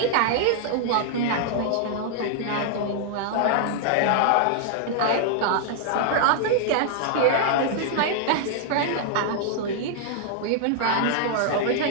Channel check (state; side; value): different; both; correlation -0.01